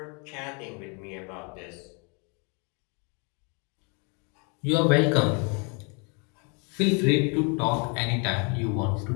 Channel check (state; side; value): quieter; right; 35.1 dB